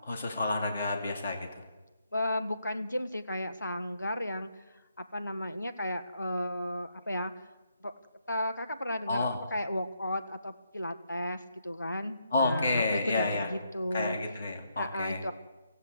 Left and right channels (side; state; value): both; inverted; correlation -0.78